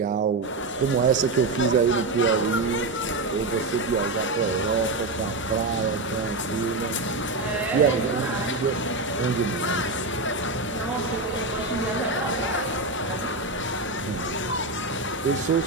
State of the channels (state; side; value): quieter; left; 3.1 dB